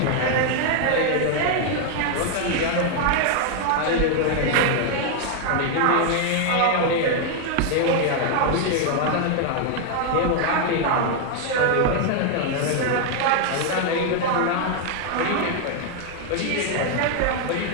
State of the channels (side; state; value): both; different; correlation 0.00